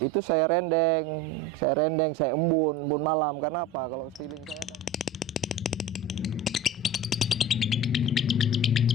itu saya rendeng, saya embun malam. Karena apa? Kalau stiling saya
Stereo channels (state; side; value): normal; both; correlation 0.33